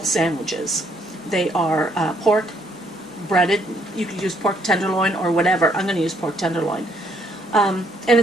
sandwiches. They are pork, breaded. You could use pork tenderloin or whatever. I'm going to use pork tenderloin. And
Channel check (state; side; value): normal; both; correlation 0.68